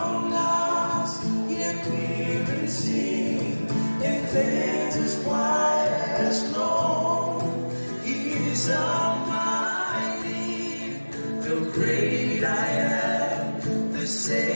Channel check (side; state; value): both; inverted; correlation -1.00